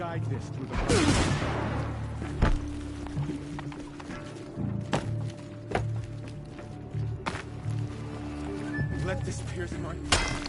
this through the... Let this pierce my...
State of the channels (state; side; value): identical; both; correlation 1.00